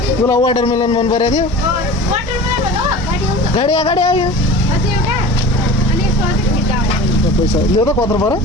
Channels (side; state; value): both; normal; correlation 0.38